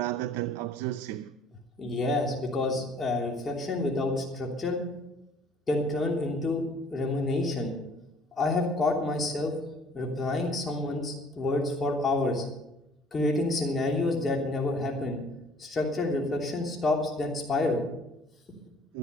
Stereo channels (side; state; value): both; normal; correlation 0.55